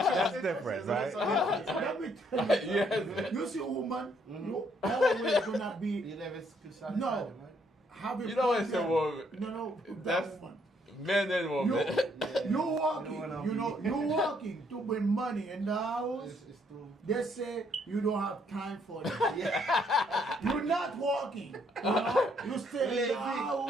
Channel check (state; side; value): normal; both; correlation 0.69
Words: different, right? Let me tell you. Yes. You see a woman, you always gonna be You never could satisfy no. them, right? Have a You know it's a problem. woman. No, That's- that woman. Men and You, women. you walking, You know what I mean? you walking to bring money in the house. It's too. They say you don't have time for that. You're not walking. You know? You stay in the